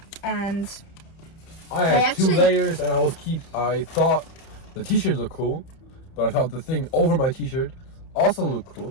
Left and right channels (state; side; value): late; right; 31 ms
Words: And I had 2 layers, and I thought the t-shirts looked cool, but I thought the thing over my t-shirt also looked cool,